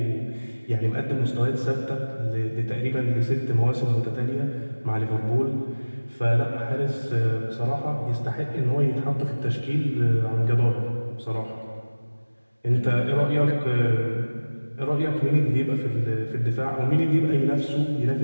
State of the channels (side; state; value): both; inverted; correlation -1.00